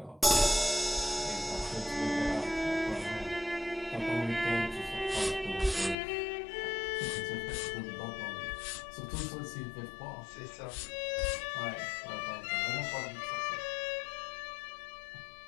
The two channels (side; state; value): right; drops out; at 6.0 s